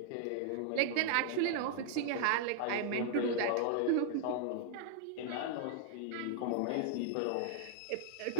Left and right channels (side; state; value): both; different; correlation 0.00